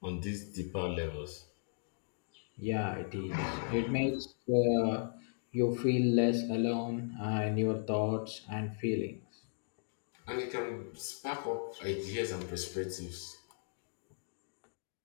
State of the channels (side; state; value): right; silent; digital silence